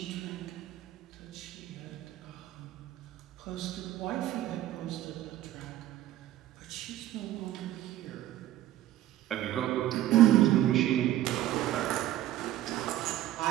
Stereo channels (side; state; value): left; quieter; 13.8 dB